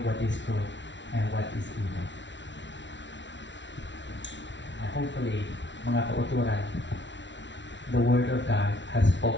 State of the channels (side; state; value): right; late; 0.53 ms